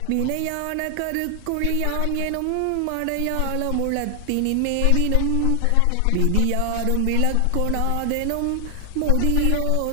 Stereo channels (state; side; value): different; both; correlation 0.00